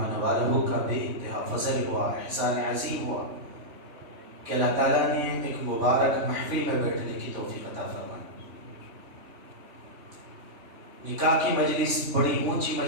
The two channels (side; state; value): left; late; 3.1 ms